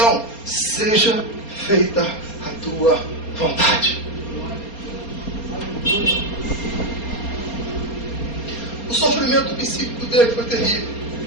seja feita a tua vontade. O sofrimento psíquico dele foi terrível.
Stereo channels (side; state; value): right; late; 4.3 ms